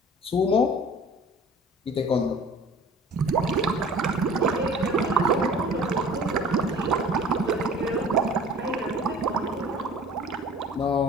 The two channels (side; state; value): both; normal; correlation 0.45